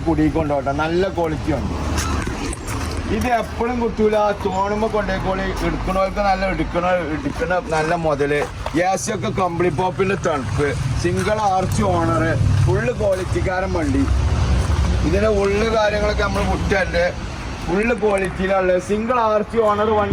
കുടിക്കൊണ്ടോട്ടോ. നല്ല ക്വാളിറ്റി ഉണ്ട്. ഇത് എപ്പോഴും കിട്ടൂല. തോണുമ്പോൾ കൊണ്ടേക്കോളി. എടുക്കണവർക്ക് നല്ല എടുക്കണ നല്ല മുതല്. AC ഒക്കെ കമ്പിളി പോപ്പിന്റെ തണുപ്പ്. Single arch owner. ഫുള്ള് ക്വാളിറ്റിക്കാരൻ വണ്ടി. ഇതിന്റെ ഉള്ളു കാര്യങ്ങളൊക്കെ നമ്മൾ വിട്ടുണ്ട്. ഫുള്ള് ക്വാളിറ്റിയിലുള്ള സിംഗിൾ ആർച്ച് ഓണർ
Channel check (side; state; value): both; identical; correlation 1.00